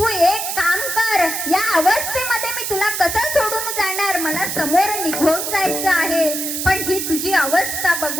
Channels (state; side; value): noise; right; hiss, 3 dB below the sound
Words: एक काम कर, या अवस्थेमध्ये मी तुला कसं सोडून जाणार, मला समोर निघून जायचं आहे. पण ही तुझी अवस्था